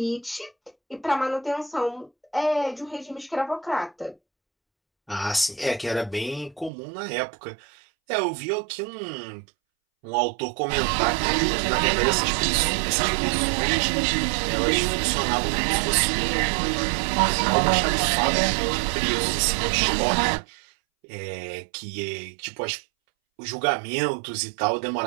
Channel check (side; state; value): left; drops out; at 6.7 s